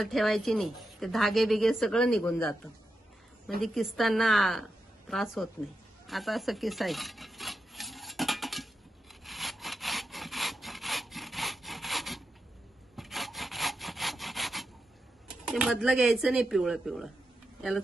ठेवायची नाही, ते धागे बिगे सगळं निघून जातं, म्हणजे किसताना त्रास होत नाही। आता असं किसायचं, ते मधलं घ्यायचं नाही, पिवळं पिवळं, याला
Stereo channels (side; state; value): both; normal; correlation 0.87